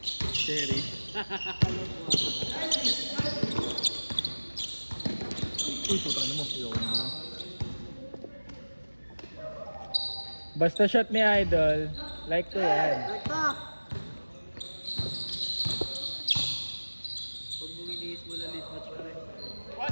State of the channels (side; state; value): both; inverted; correlation -1.00